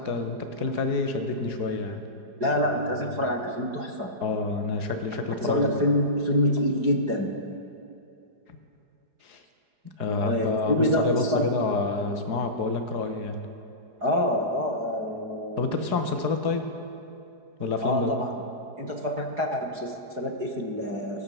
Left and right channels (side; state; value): left; late; 4.8 ms